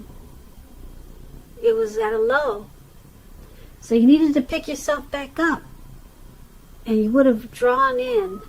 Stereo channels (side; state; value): both; identical; correlation 1.00